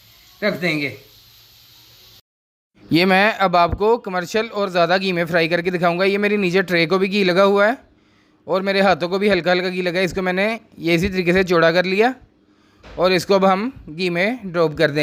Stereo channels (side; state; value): both; identical; correlation 1.00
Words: रख देंगे। ये मैं अब आपको कमर्शियल और ज़्यादा घी में फ्राई करके दिखाऊंगा। ये मेरी नीचे ट्रे को भी घी लगा हुआ है और मेरे हाथों को भी हल्का हल्का घी लगा है। इसको मैंने ये इसी तरीके से चौड़ा कर लिया और इसको अब हम घी में ड्रॉप कर